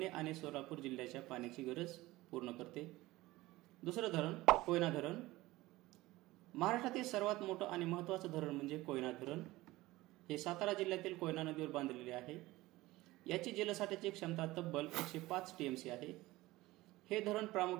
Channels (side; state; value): left; quieter; 18.7 dB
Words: आणि सोलापूर जिल्ह्याच्या पाण्याची गरज पूर्ण करते। दुसरं धरण कोयना धरण। महाराष्ट्रातील सर्वात मोठं आणि महत्त्वाचं धरण म्हणजे कोयना धरण। हे सातारा जिल्ह्यातील कोयना नदीवर बांधलेले आहे। याची जलसाठ्याची क्षमता तब्बल 105 टीएमसी आहे। हे धरण